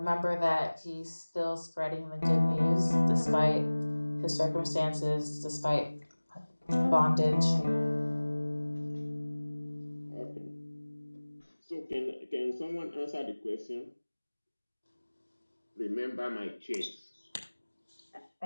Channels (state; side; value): inverted; both; correlation -1.00